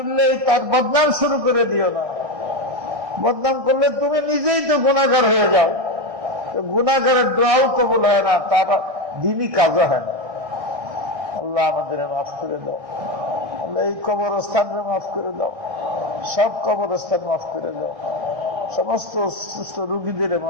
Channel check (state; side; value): late; left; 1.6 ms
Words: তার বদনাম শুরু করে দিও না। বদনাম করলে তুমি নিজেই তো গুনাহগার হয়ে যাও। গুনাহগারের দোয়াও কবুল হয় না, তার দিনই কাজও হয় না। আল্লাহ আমাদের মাফ করে দাও। আল্লাহ এই কবরস্থানকে মাফ করে দাও। সব কবরস্থান মাফ করে দাও। সমস্ত সুস্থ রোগীদের